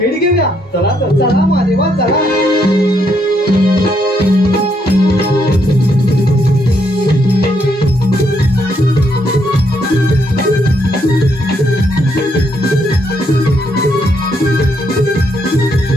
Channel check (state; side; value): normal; both; correlation 0.74